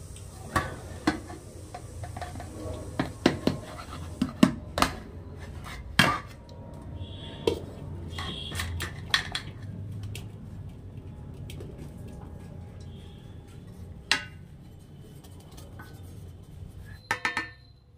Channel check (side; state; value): both; identical; correlation 1.00